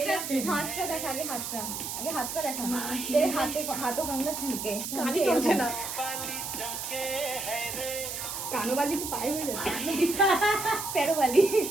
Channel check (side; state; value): right; noise; hiss, 5 dB below the sound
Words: দেখা, আগে হাতটা দেখা। তেরে হাতও কান্না ছুঁকে। কানই চলছে না। কানোবালি তো পায়ে হয়ে যাচ্ছে। পেরোবালি।